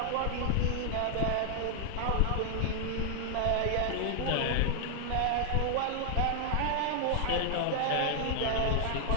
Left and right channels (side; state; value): both; different; correlation 0.00